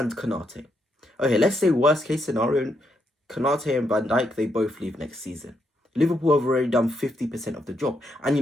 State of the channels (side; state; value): both; normal; correlation 0.79